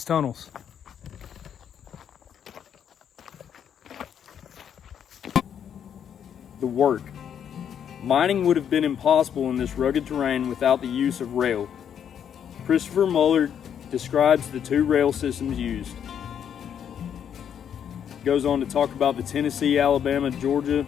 tunnels. The work. Mining would have been impossible in this rugged terrain without the use of rail. Christopher Muller describes the two rail systems used. Goes on to talk about the Tennessee, Alabama, Georgia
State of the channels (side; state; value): right; quieter; 8.6 dB